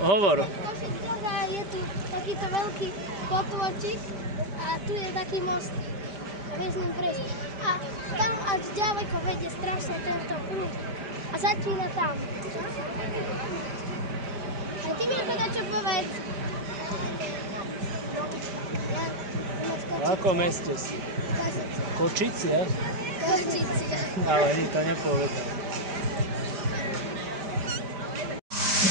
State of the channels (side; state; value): left; late; 5.0 ms